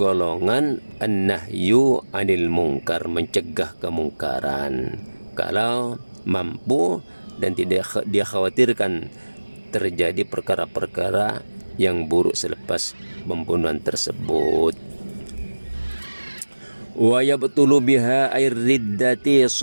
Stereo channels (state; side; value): inverted; both; correlation -1.00